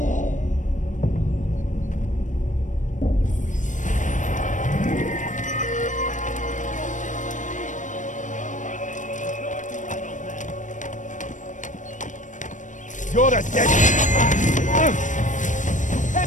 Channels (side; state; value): right; late; 0.37 ms